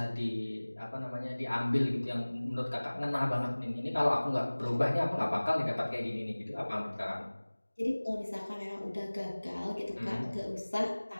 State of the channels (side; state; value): both; inverted; correlation -1.00